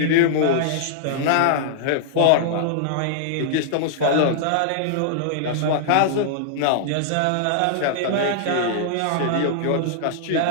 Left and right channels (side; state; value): both; different; correlation -0.01